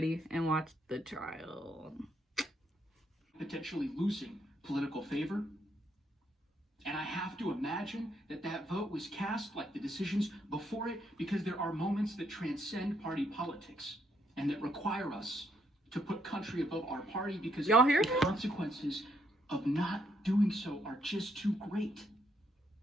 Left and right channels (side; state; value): both; normal; correlation 0.74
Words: and watch the trial. Potentially losing political favor. And I have to imagine that that vote was cast like the decisions before it, because there are moments that transcend party politics and that require us to put country above our party, because y'all hear the consequences of not doing so are just too great.